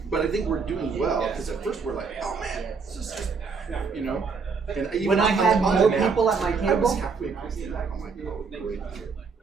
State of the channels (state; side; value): quieter; left; 5.1 dB